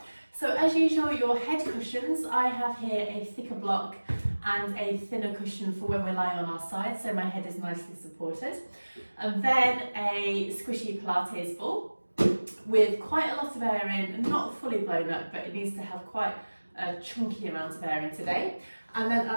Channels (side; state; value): both; inverted; correlation -1.00